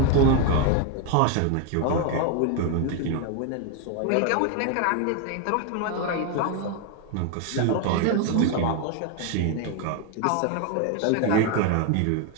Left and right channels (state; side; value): different; both; correlation 0.01